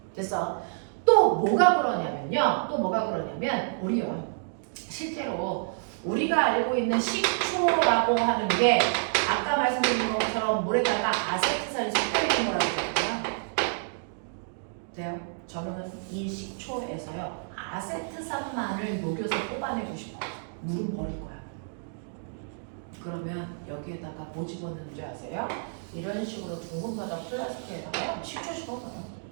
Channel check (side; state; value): left; silent; digital silence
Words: 됐어? 또 뭐가 그러냐면 우리요 실제로 우리가 알고 있는 식초라고 하는 게 아까 말씀드린 것처럼 물에다가 아세트산이 섞여 있는 거라고 했거든요. 돼요? 저는 이 식초에서요 아세트산만을 녹여서 뽑아내고 싶어요. 물은 버릴 거야. 그러면 여기에다가 뭐 집어넣는 줄 아세요? 이런 식으로 둥근 바닥 플라스틱에다가 식초 집어넣어요.